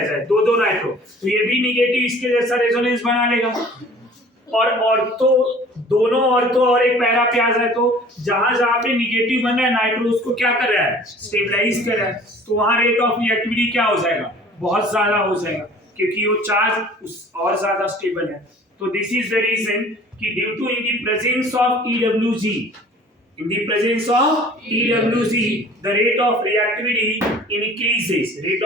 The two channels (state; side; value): normal; both; correlation 0.48